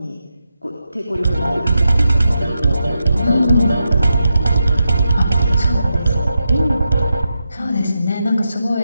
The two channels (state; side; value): inverted; both; correlation -0.87